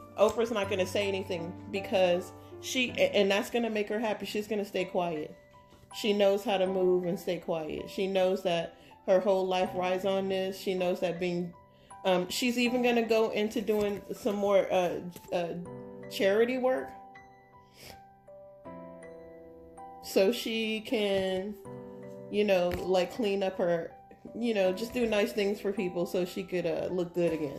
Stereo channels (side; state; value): both; identical; correlation 1.00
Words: Oprah's not going to say anything because and that's going to make her happy. She's going to stay quiet. She knows how to move and stay quiet. She knows that her whole life rides on this. She knows that she's even going to go into doing some more charity work, so she can, like clean up her, just do nice things for people so she could look good